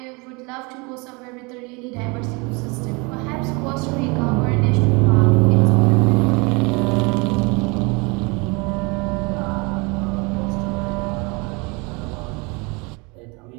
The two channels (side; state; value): left; quieter; 28.7 dB